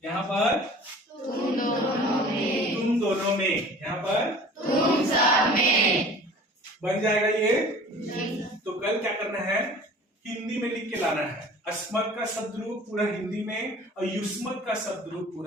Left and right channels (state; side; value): normal; both; correlation 0.45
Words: यहाँ पर तुम दोनों में। तुम दोनों में, यहाँ पर तुम सब में। बन जाएगा ये। तो कल क्या करना है? हिंदी में लिख के लाना है। अस्मत का शब्द रूप पूरा हिंदी में और युष्मत का शब्द रूप